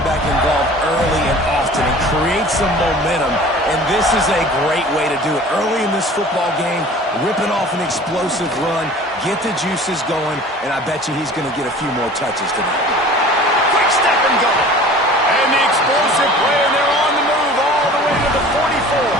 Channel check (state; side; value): normal; both; correlation 0.44